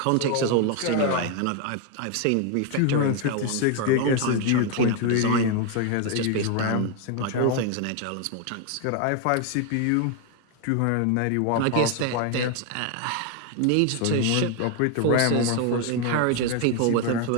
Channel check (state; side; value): different; both; correlation 0.01